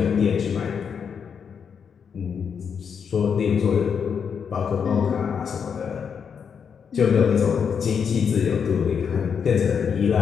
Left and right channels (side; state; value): right; quieter; 6.8 dB